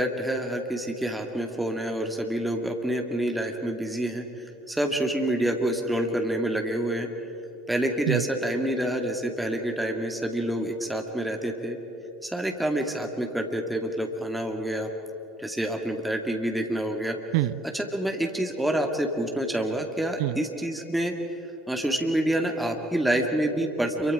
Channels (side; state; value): both; normal; correlation 0.67